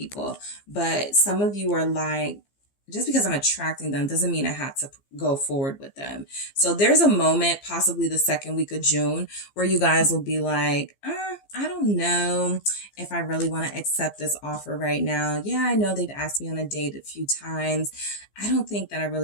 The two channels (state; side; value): late; right; 15 ms